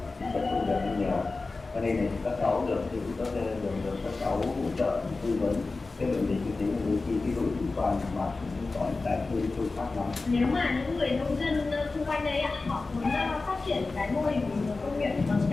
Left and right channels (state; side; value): quieter; right; 3.7 dB